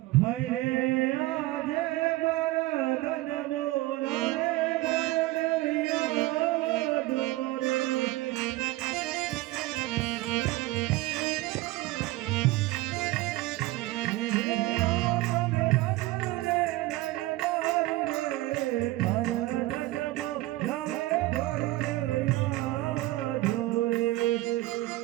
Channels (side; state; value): left; quieter; 18.4 dB